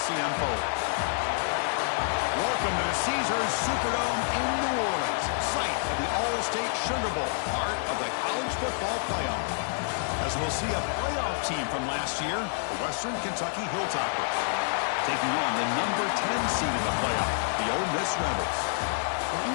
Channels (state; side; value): silent; right; 59 dB below the other